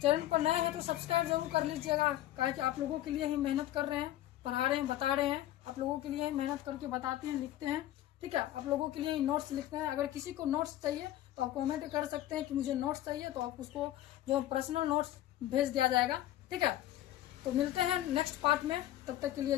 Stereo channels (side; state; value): right; quieter; 13.9 dB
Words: चैनल पर नए हैं तो सब्सक्राइब जरूर कर लीजिएगा, काहे कि आप लोगों के लिए ही मेहनत कर रहे हैं, पढ़ा रहे हैं, बता रहे हैं। आप लोगों के लिए ही मेहनत करके बताते हैं, लिखते हैं। ठीक है, आप लोगों के लिए ही नोट्स लिखते हैं। अगर किसी को नोट्स चाहिए तो आप कमेंट कर सकते हैं कि मुझे नोट्स चाहिए, तो आप उसको जो पर्सनल नोट्स भेज दिया जाएगा। ठीक है, तो मिलते हैं नेक्स्ट पार्ट में, तब तक के